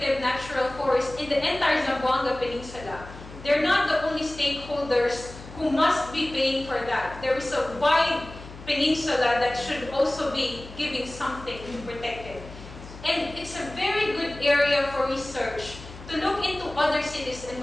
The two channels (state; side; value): noise; left; hum, 16 dB below the sound